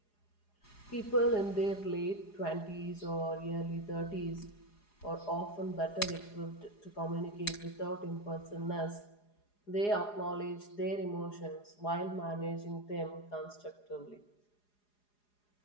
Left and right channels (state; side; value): late; right; 4.8 ms